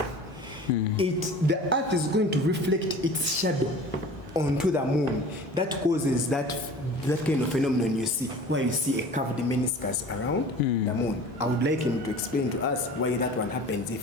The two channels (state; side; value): normal; both; correlation 0.41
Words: the earth is going to reflect its shadow onto the moon. That causes that kind of phenomenon you see, where you see a curved meniscus around the moon. I would like him to explain to us why that one happens, if